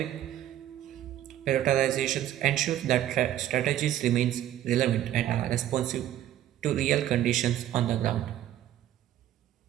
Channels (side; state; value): left; quieter; 12.2 dB